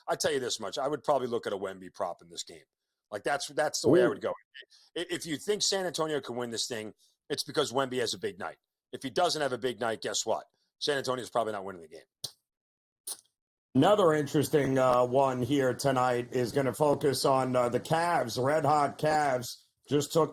I tell you this much, I would probably look at a Wemby prop in this game. Like that's the way I would go. If you think San Antonio can win this thing, it's because Wemby has a big night. If he doesn't have a big night, guess what? San Antonio's probably not winning the game. Another interesting one here tonight is going to focus on the Cavs. Red hot Cavs just took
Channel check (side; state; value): both; identical; correlation 1.00